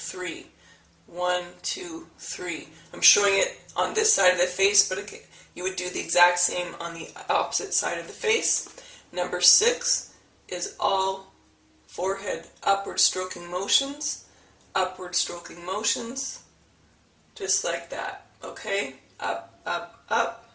1, 2, 3. I'm showing it on this side of the face, but again, you would do the exact same on the opposite side of the face. Number 6 is all forehead upward stroking motions, just like that. Okay? Up, up, up,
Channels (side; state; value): both; identical; correlation 1.00